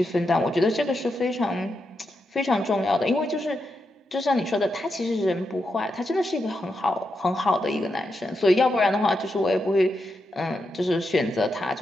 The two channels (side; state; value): both; normal; correlation 0.85